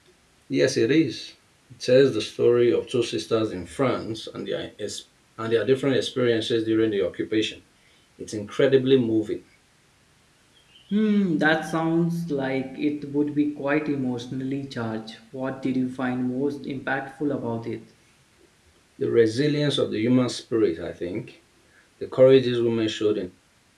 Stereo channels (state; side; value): identical; both; correlation 1.00